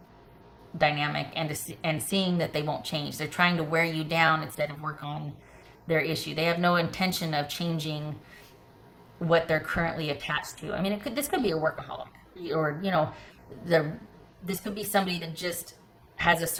dynamic, and seeing that they won't change. They're trying to wear you down instead of work on their issue. They have no intention of changing what they're currently attached to. I mean, this could be a workaholic, or this could be somebody that just has a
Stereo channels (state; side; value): identical; both; correlation 1.00